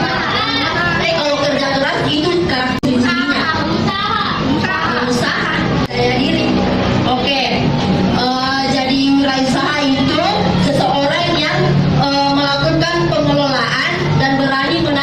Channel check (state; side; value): identical; both; correlation 1.00